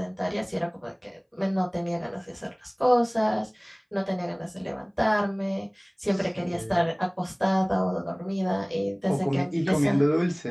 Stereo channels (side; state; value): both; identical; correlation 1.00